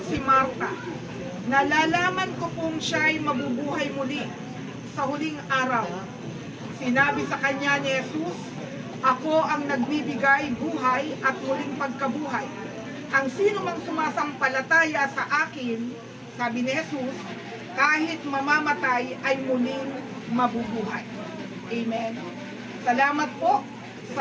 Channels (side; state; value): both; identical; correlation 1.00